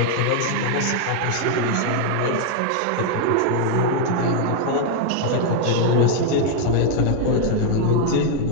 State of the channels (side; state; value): both; different; correlation 0.00